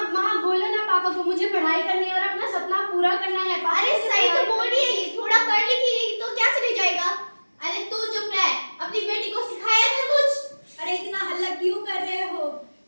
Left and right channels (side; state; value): both; inverted; correlation -1.00